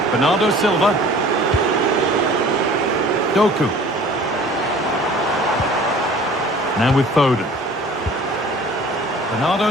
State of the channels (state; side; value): normal; both; correlation 0.47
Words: Bernardo Silva. Doku. Now with Foden.